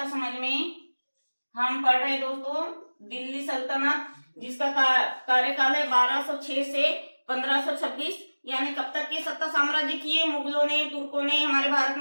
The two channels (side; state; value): both; inverted; correlation -1.00